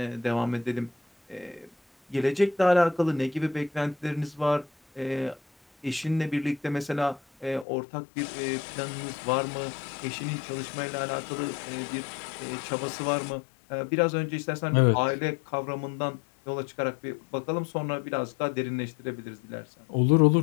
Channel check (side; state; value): right; drops out; at 7.7 s